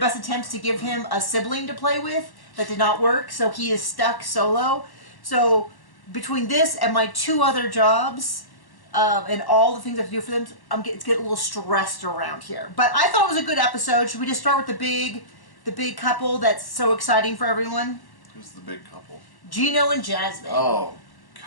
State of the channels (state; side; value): late; right; 1.1 ms